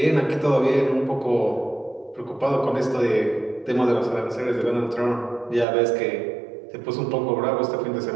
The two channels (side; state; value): left; drops out; at 5.7 s